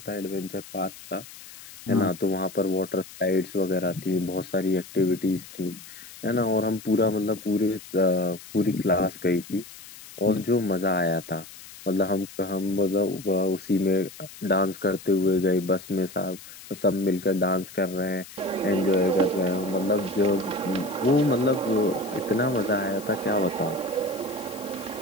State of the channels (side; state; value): left; noise; hiss, 17 dB below the sound